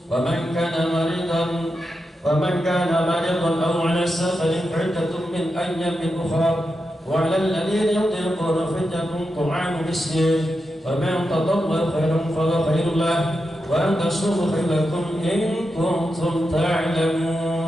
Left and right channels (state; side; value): normal; both; correlation 0.88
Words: wa man kana maridan أو على سفر عدة من أيام أخرى. وعلى الذين يطيقون فدية طعام مسكين، فمن تطوع خيرا فهو خير له، وأن تصوموا خير لكم إن كنتم